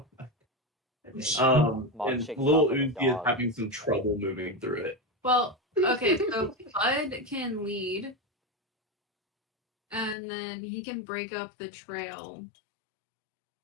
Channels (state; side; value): drops out; right; at 10.2 s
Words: Mog And shakes little off like a Uzi is dog. having some trouble moving through it. Well, okay, so Bud can lead. And then he can break up the trail.